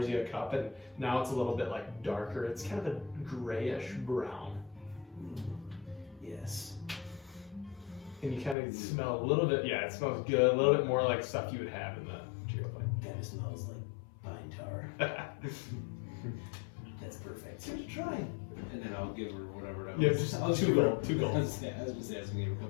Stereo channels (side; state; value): right; drops out; at 8.6 s